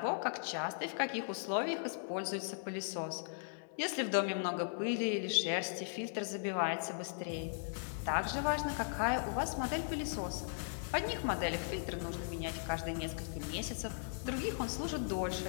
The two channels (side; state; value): right; silent; digital silence